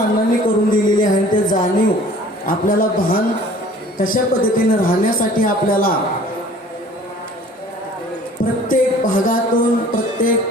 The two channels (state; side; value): normal; both; correlation 0.50